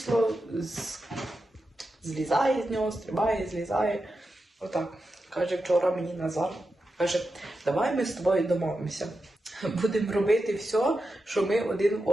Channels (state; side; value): normal; both; correlation 0.89